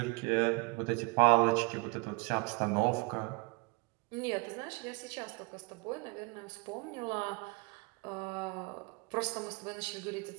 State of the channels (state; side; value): quieter; left; 27.9 dB